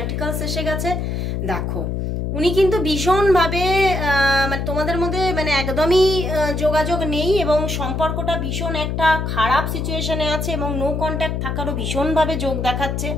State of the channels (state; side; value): noise; left; hum, 2 dB below the sound